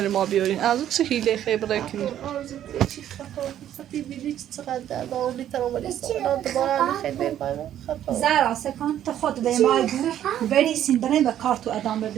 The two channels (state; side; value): quieter; left; 11.1 dB